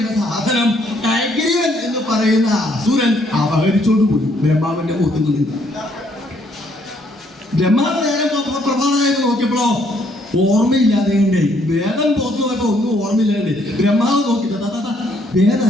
സാധനം ഹയഗ്രീവൻ എന്ന് പറയുന്ന അസുരൻ അപഹരിച്ചോണ്ട് പോയി ബ്രഹ്മാവിന്റെ മുഖത്തിൽ. ബ്രഹ്മാവ് നേരം പ്രഭാതമായിട്ട് നോക്കിയപ്പോഴോ ഓർമ്മയില്ലാതെ വേദം പോത്തു പോയപ്പോ ഒന്നും ഓർമ്മയില്ലാണ്ട് ബ്രഹ്മാവ് നോക്കി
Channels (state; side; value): normal; both; correlation 0.68